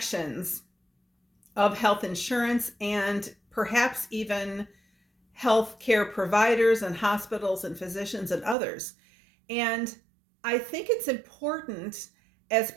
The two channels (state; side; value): drops out; left; at 8.6 s